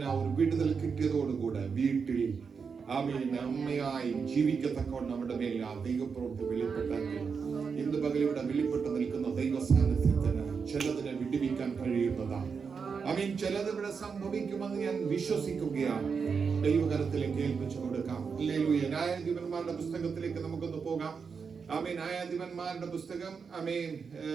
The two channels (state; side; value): quieter; left; 5.7 dB